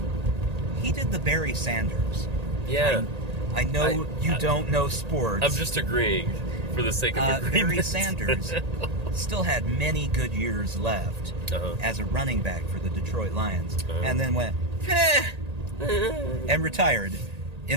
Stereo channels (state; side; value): late; left; 1.8 ms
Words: he did the Barry Sanders. Yeah. I know you don't know sports. I'm just agreeing for the sake of agreement. Barry Sanders still had many good years left as a running back for the Detroit Lions, and then went and retired